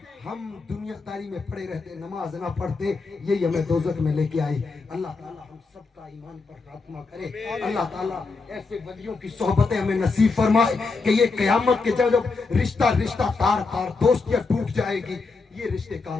हम दुनियादारी में पड़े रहते, नमाज ना पढ़ते, यही हमें दोज़ख में लेके आई। अल्लाह ताला हम सबका ईमान पर खात्मा करे। अल्लाह ताला ऐसे वलियों की सोहबतें हमें नसीब फरमाए कि ये क़यामत के जब रिश्ता तार दोस्तियां टूट जाएगी, ये रिश्ते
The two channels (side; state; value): right; quieter; 4.1 dB